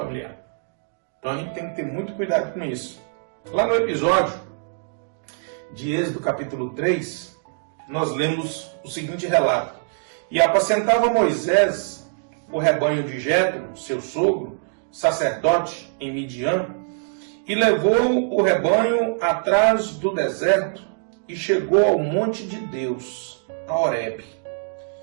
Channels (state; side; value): silent; left; digital silence